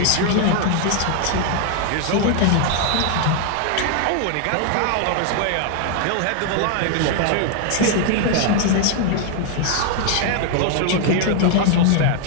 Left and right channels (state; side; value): different; both; correlation 0.00